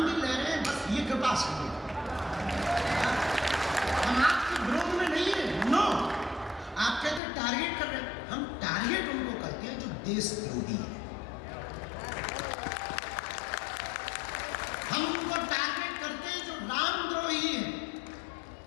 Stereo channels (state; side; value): drops out; right; at 7.2 s